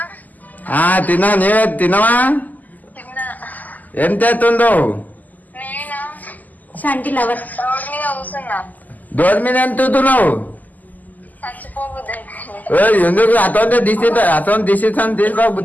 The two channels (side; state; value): right; late; 0.081 ms